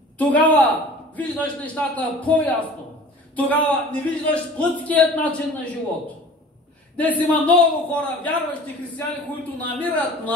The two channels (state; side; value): normal; both; correlation 0.43